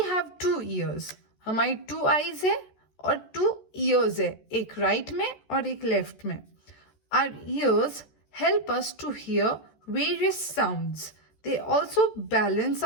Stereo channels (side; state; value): right; late; 14 ms